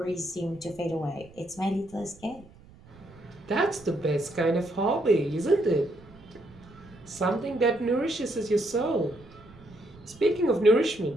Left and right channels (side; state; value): right; noise; rumble, 23 dB below the sound